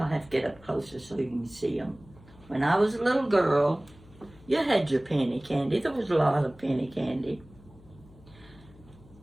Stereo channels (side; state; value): left; noise; hum, 24 dB below the sound